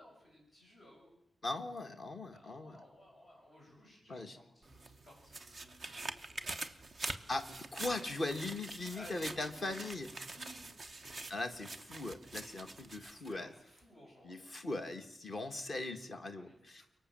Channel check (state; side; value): normal; both; correlation 0.85